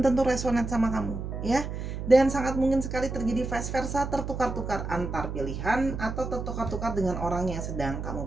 tentu resonate sama kamu, ya. Dan sangat mungkin sekali terjadi vice versa, tertukar-tukar antar pilihan atau tertukar-tukar dengan orang yang sedang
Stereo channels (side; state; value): right; noise; hum, 6 dB below the sound